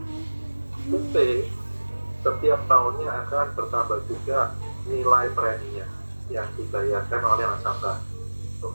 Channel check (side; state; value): both; inverted; correlation -1.00